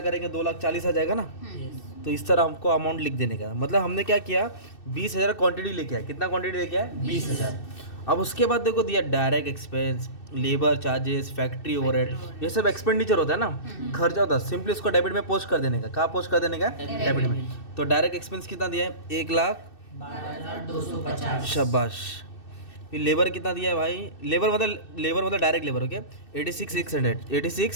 करेंगे, 2,40,000 आ जाएगा ना। तो इस तरह हमको अमाउंट लिख देने का, मतलब हमने क्या किया, 20,000 क्वांटिटी लेके आया। कितना क्वांटिटी लेके आया, 20,000। अब उसके बाद देखो दिया direct expense, labour charges, factory overhead, ये सब एक्सपेंडिचर होता है ना, खर्चा होता है। सिंपली उसको डेबिट में पोस्ट कर देने का। कहाँ पोस्ट कर देने का, डेबिट में। तो डायरेक्ट एक्सपेंस कितना दिया है, 1,12,250। शाबाश। फिर लेबर कितना दिया है भाई, लेबर मतलब डायरेक्ट लेबर, ओके,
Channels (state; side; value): late; right; 2.6 ms